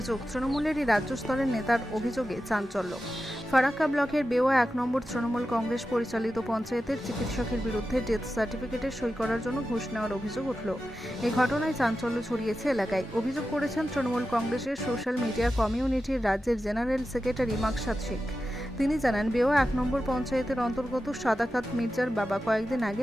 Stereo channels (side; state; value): both; normal; correlation 0.92